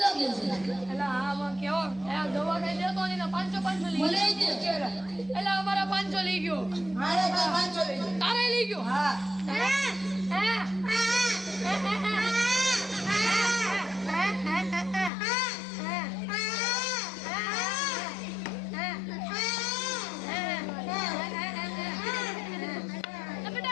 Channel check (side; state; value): right; drops out; at 15.1 s